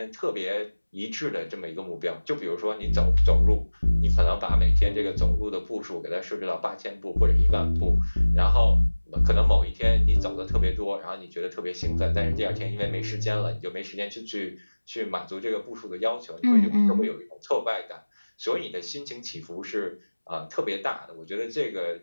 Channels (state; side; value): inverted; both; correlation -1.00